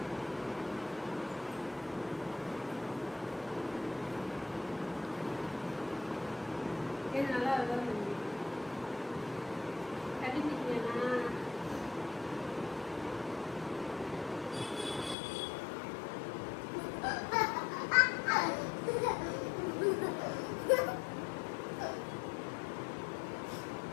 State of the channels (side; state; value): right; drops out; at 15.2 s